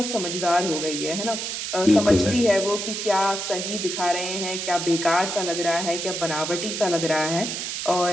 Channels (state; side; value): noise; right; hiss, 4 dB below the sound